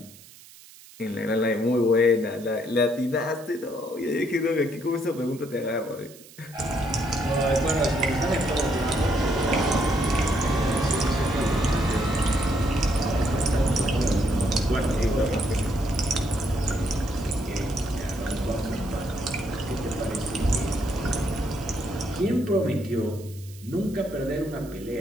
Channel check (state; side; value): noise; right; hiss, 21 dB below the sound